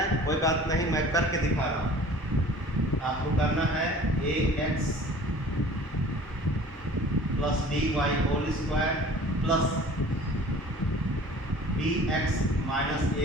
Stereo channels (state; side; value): normal; both; correlation 0.46